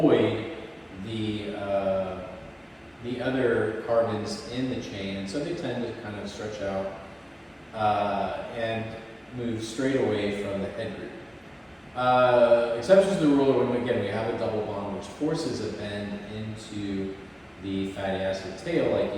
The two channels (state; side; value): identical; both; correlation 1.00